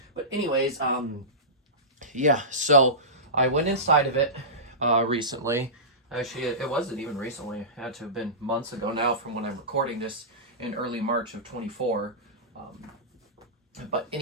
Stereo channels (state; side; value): normal; both; correlation -0.19